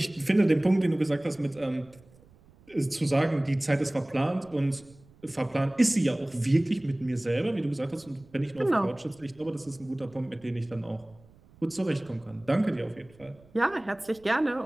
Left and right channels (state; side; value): noise; right; rumble, 27 dB below the sound